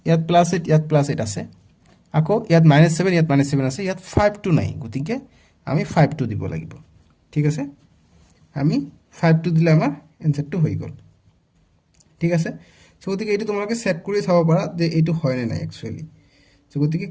ইয়াত প্লাছ 8, ইয়াত প্লাছ 8 আছে, আকৌ ইয়াত -7, ইয়াত -7 আছে, ইয়াত 5টো নাই। গতিকে আমি 5টো দিব লাগিব। ঠিক আছে, আমি 5টো দিলে আমাৰ এনচাৰটো হৈ গ'ল। ঠিক আছে, চ' গতিকে এইটো তোমালোকে চেক কৰি চাব পাৰা যে এইটো হয় নে নাই একচুৱেলি। চ' গতিকে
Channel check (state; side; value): identical; both; correlation 1.00